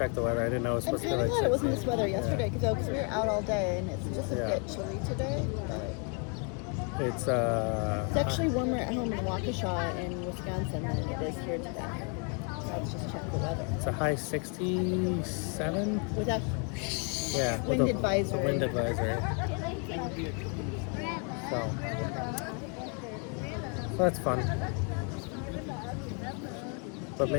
the weather. I didn't know it was I'm supposed to be kind of like glad it wasn't 60. this weather yesterday because we were out all day and it's just a Yeah. bit chilly today. But It's It's actually warmer at home in Waukesha in Wisconsin than it is here today. Let's just check the weather. it's a high 67. Without Yeah. Wind with a advisory. Wind advisory. So that's fun. But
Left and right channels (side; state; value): right; quieter; 37.8 dB